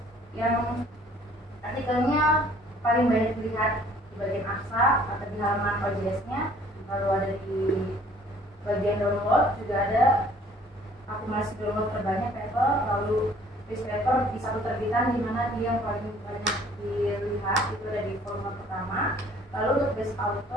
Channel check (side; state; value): both; normal; correlation 0.56